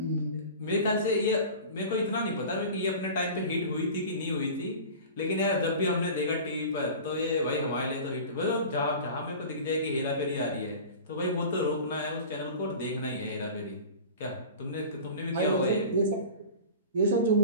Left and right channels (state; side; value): inverted; both; correlation -0.36